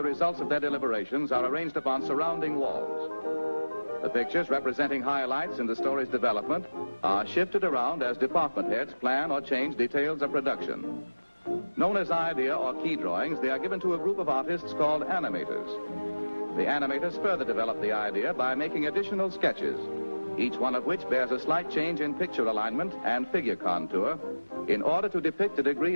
results of their deliberations are arranged upon surrounding walls. The pictures representing highlights in the story's development are shifted around as department heads plan or change details of production. Known as idea or key drawings, they are given to a group of artists called animators. The animators further develop the idea by making additional sketches, each one of which bears a slight change in picture alignment and figure contour in order to depict a degree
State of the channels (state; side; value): inverted; both; correlation -1.00